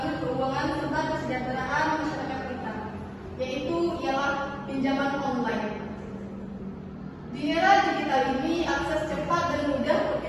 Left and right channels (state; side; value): identical; both; correlation 1.00